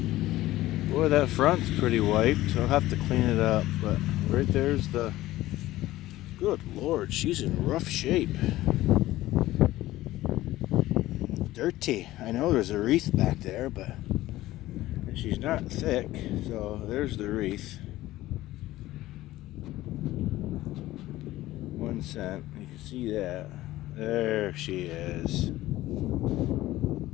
Boy, that front's pretty wiped, so I'll have to clean it up. But right there's the... Good Lord, she's in rough shape. Dirty. I know there's a wreath back there, but she's not thick, so there's the wreath. 1 cent. You can see that. There she is.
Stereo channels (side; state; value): right; quieter; 16.2 dB